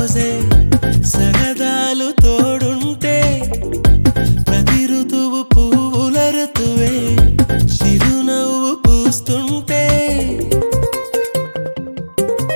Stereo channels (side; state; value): both; inverted; correlation -1.00